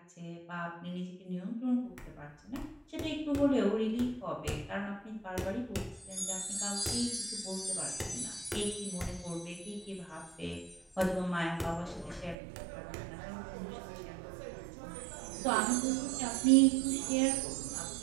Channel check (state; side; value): drops out; left; at 12.4 s